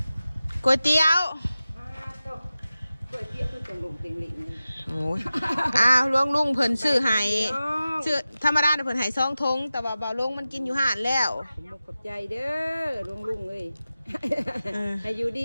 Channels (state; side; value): inverted; both; correlation -0.95